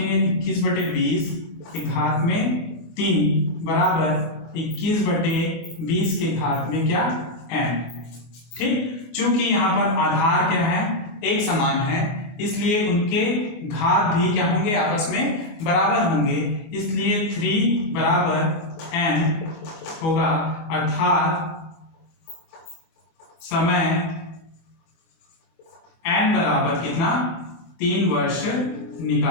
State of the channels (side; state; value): right; late; 25 ms